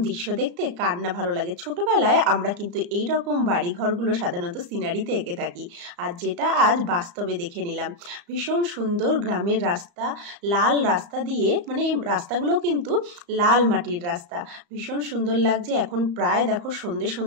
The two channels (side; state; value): left; late; 34 ms